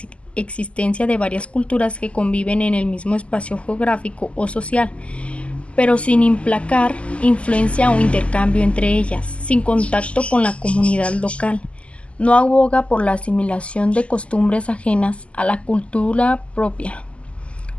existencia de varias culturas que conviven en el mismo espacio geográfico o social, pero sin implicar influencia o intercambio entre ellas, sin contacto con la comunidad local. No aboga por la asimilación de costumbres ajenas a la cultura propia,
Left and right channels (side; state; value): right; late; 0.058 ms